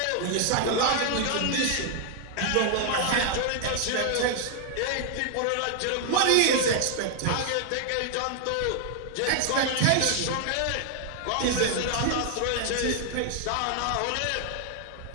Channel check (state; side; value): different; both; correlation 0.00